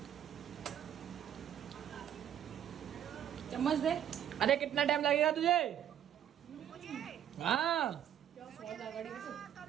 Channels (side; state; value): left; quieter; 10.2 dB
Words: चम्मच दे। अरे कितना टाइम लगेगा तुझे? हाँ